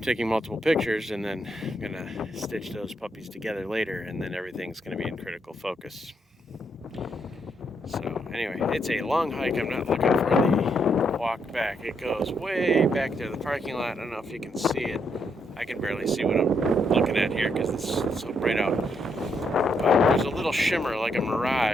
taking multiple pictures, and then I'm gonna stitch those puppies together later, and then everything's gonna be in critical focus. So anyway, it's a long hike. I'm not looking for the walk back. It goes way back to the parking lot. I don't know if you can see it. I can barely see what I'm looking at here because it's so bright out. But there's a little shimmer like a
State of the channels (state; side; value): normal; both; correlation 0.76